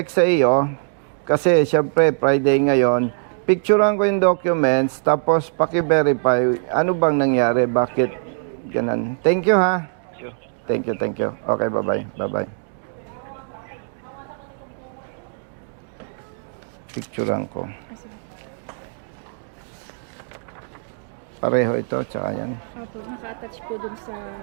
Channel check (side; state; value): left; silent; digital silence